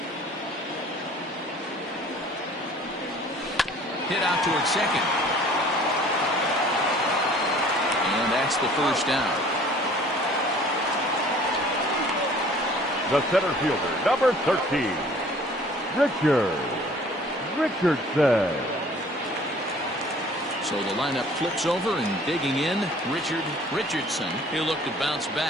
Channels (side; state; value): both; normal; correlation 0.52